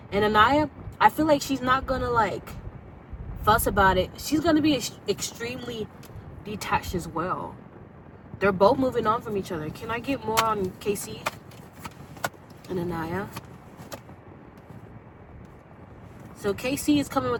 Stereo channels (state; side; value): identical; both; correlation 1.00